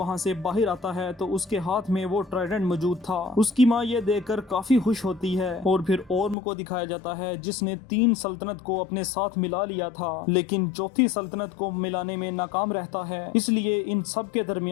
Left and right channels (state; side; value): drops out; right; at 6.4 s